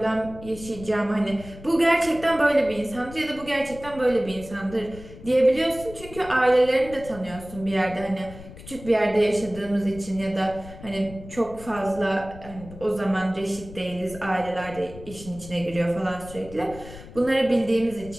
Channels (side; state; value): left; noise; rumble, 16 dB below the sound